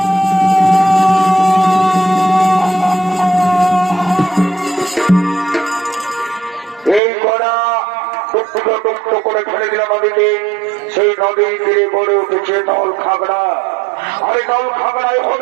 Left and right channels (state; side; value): drops out; left; at 7.0 s